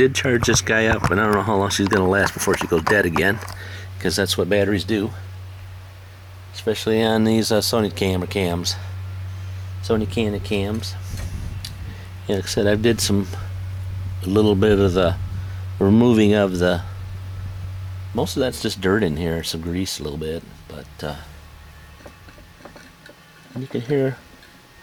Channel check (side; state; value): both; identical; correlation 1.00